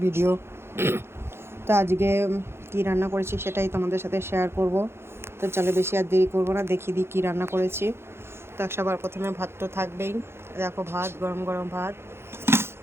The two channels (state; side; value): late; left; 0.12 ms